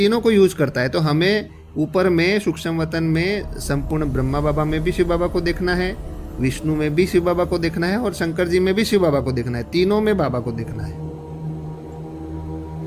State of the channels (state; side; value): identical; both; correlation 1.00